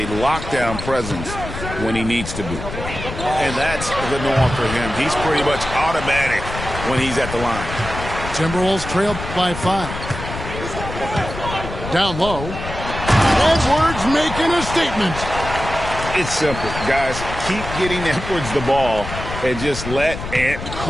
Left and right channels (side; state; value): left; noise; rumble, 8 dB below the sound